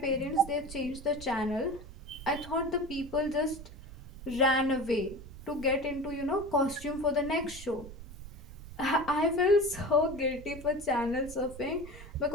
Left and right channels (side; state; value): right; noise; rumble, 14 dB below the sound